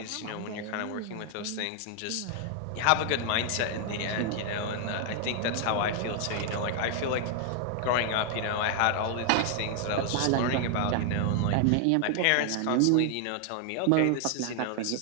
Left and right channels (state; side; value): different; both; correlation 0.00